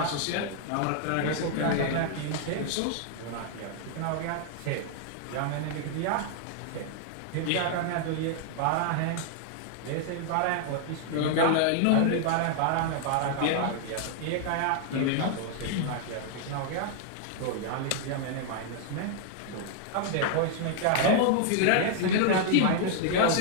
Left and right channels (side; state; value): both; different; correlation -0.01